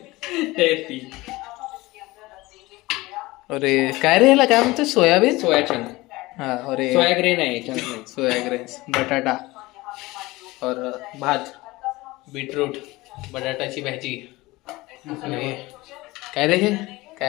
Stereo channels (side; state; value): right; quieter; 20.4 dB